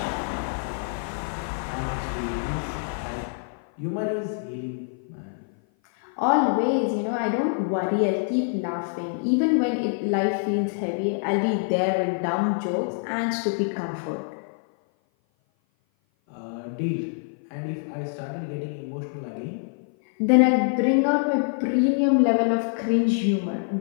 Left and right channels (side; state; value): right; silent; 56 dB below the other